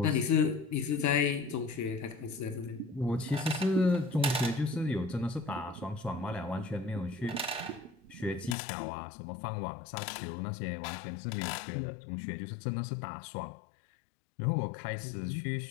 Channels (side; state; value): right; drops out; at 8.6 s